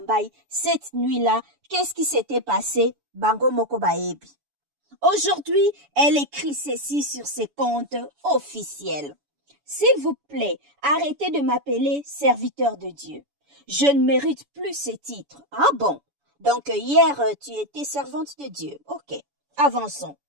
cette nuit-là, qu'est-ce qui s'était passé? Bango Moko Baebi. Aujourd'hui, elle écrit ceci sur ses comptes officiels. S'il vous plaît, arrêtez de m'appeler serviteur de Dieu. Je ne mérite plus ce titre. Ah bon? Donc hier, tu étais servante de Dieu. Ok, avançons.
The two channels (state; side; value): late; left; 7.0 ms